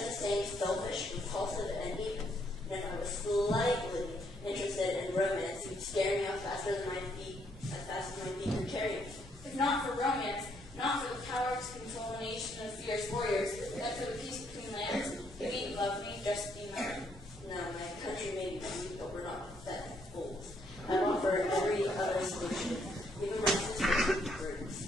the same selfish, repulsive, and even. And if I was slightly interested in romance, you'd scare me off faster than my feet, as fast as my feet could carry me. If not for romance, not for the power to control a nation of fierce warriors, but for the peace between lands, you needn't love me, just be mine. No, my country may be weak, but we're not pathetic fools. I offer every other solution, even my sister's brutes.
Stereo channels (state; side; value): normal; both; correlation 0.72